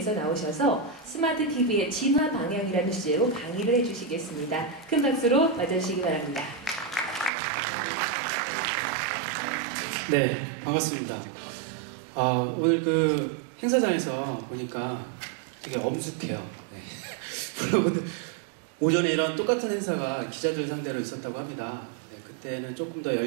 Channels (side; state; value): left; drops out; at 7.3 s